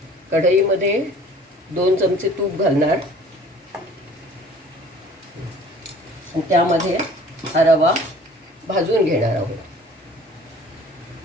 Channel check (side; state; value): both; normal; correlation 0.49